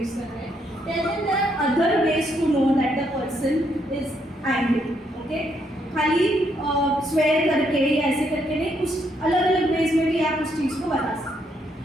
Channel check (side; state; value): both; normal; correlation 0.74